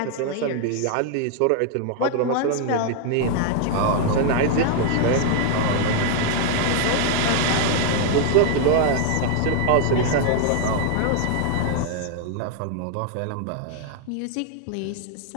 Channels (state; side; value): different; both; correlation 0.00